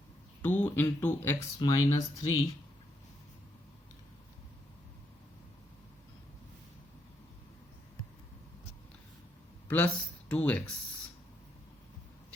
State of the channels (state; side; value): normal; both; correlation 0.77